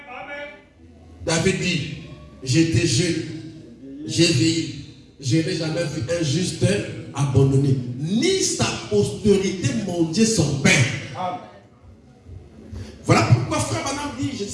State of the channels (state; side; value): identical; both; correlation 1.00